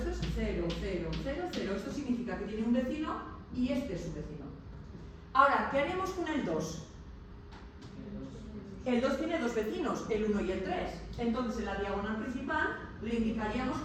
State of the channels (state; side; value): identical; both; correlation 1.00